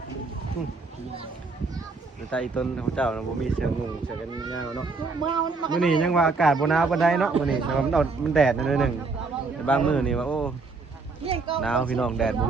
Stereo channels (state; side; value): quieter; left; 4.0 dB